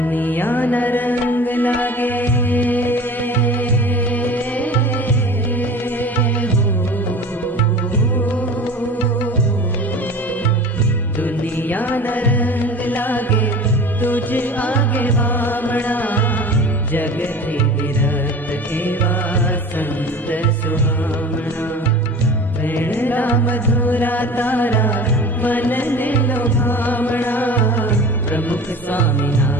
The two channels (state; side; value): normal; both; correlation 0.38